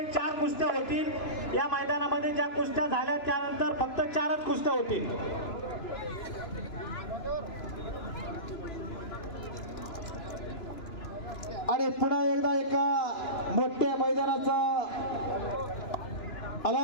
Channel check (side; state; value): right; late; 2.9 ms